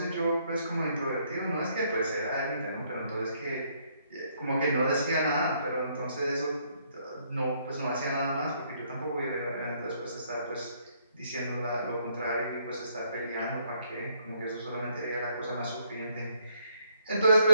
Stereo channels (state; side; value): inverted; both; correlation -0.71